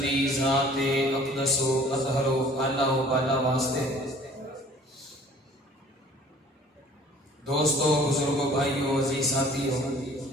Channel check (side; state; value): both; normal; correlation 0.52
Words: دی ذات اقدس و اطہر و اعلیٰ و بالا واسطے. دوستو، بزرگوں، بھائیوں، عزیز ساتھیوں،